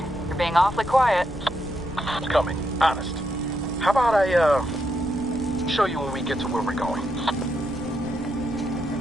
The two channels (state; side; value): noise; left; rumble, 17 dB below the sound